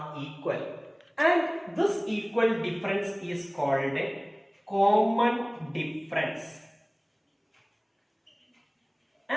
equal, and this equal difference is called a common difference,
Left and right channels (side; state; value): both; identical; correlation 1.00